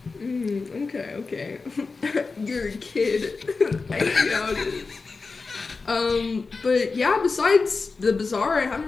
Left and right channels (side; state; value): right; quieter; 4.2 dB